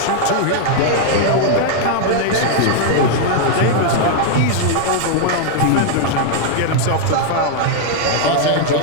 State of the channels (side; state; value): both; different; correlation 0.00